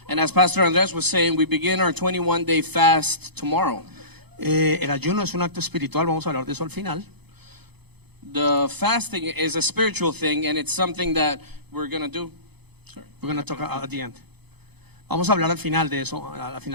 And as Pastor Andres was saying, we begin our 21-day fast tomorrow. El ayuno es un acto espiritual, vamos a hablar de eso al final. The fasting is a spiritual thing, and it's something that we're going to do. We're going to talk at the end. Vamos a hablar al final de eso, al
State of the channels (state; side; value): late; left; 0.98 ms